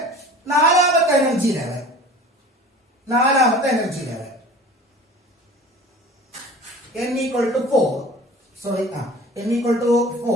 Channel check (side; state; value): both; normal; correlation 0.42